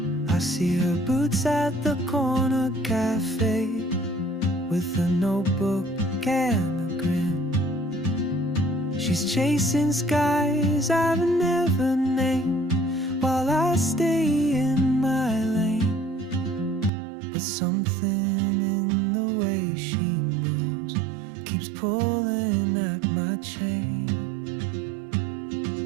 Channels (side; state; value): left; drops out; at 16.9 s